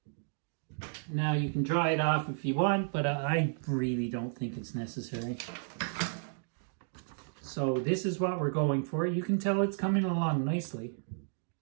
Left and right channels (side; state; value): left; silent; digital silence